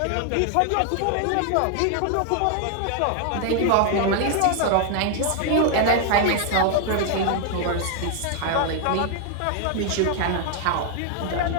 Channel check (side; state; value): both; different; correlation 0.00